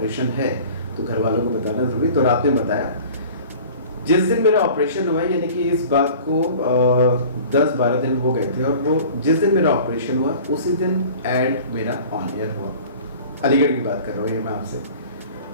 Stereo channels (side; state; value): both; inverted; correlation -0.44